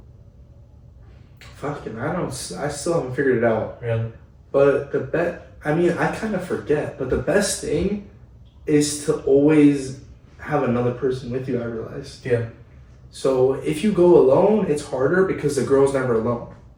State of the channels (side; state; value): both; identical; correlation 1.00